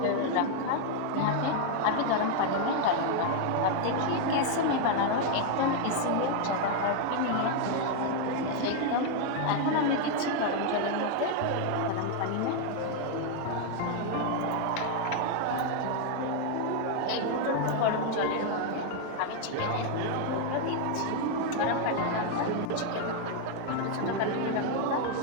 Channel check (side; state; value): both; different; correlation 0.00